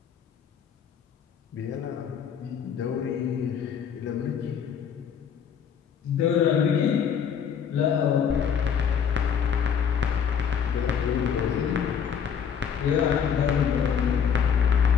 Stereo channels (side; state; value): right; quieter; 7.5 dB